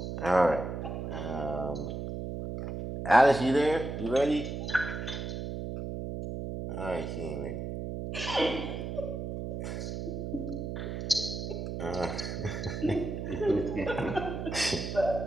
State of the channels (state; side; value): noise; right; hum, 5 dB below the sound